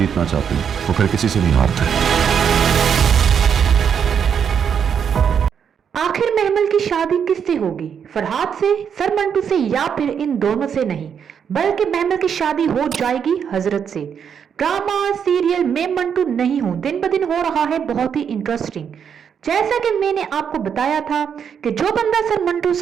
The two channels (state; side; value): quieter; left; 7.6 dB